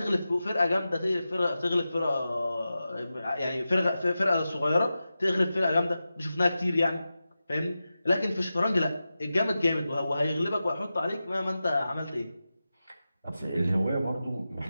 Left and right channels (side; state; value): both; inverted; correlation -0.93